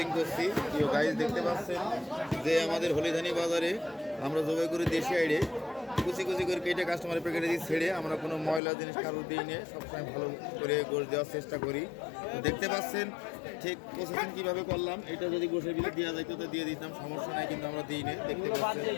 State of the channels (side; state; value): right; drops out; at 8.6 s